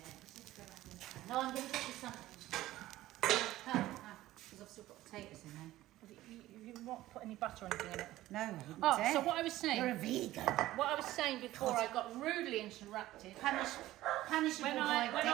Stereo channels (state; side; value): quieter; left; 15.7 dB